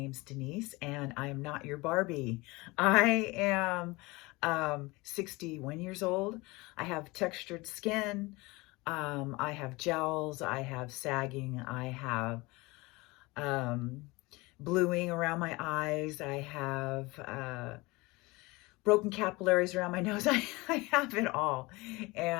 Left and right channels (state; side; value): quieter; right; 23.2 dB